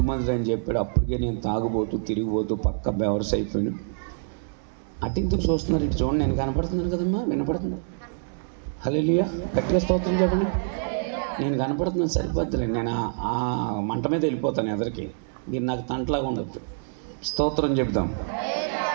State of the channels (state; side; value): silent; left; digital silence